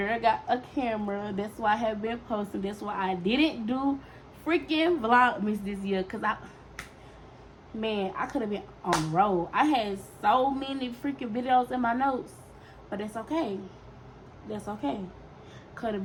got a camera. That's why I have been posting. That's why I didn't do freaking Vlogmas this year. Because I could have been on the road. I had so many freaking videos in my notes. But that's okay. That's okay. Because the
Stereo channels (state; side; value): identical; both; correlation 1.00